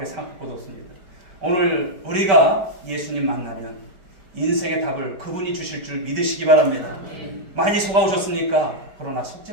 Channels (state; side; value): late; left; 5.2 ms